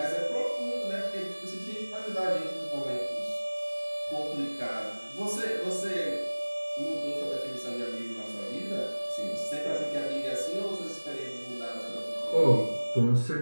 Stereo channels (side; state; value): both; inverted; correlation -1.00